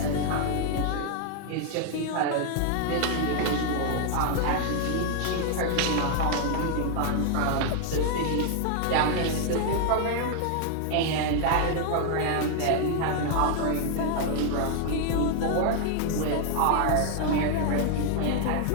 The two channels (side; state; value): both; different; correlation 0.00